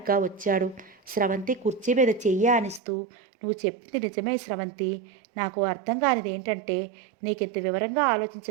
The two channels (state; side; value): drops out; left; at 2.8 s